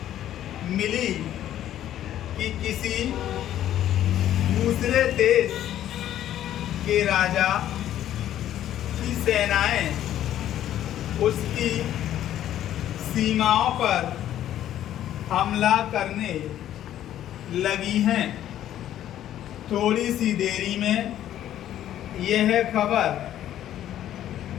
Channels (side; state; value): right; quieter; 11.8 dB